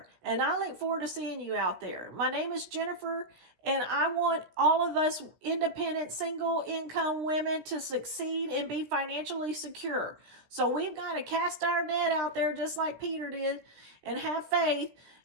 And I look forward to seeing you out there. My name is Jenifer, and I want all of us independent, single income women to succeed and be financially secure. So we've got to cast our net out there just like Peter did and have faith,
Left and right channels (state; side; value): late; left; 17 ms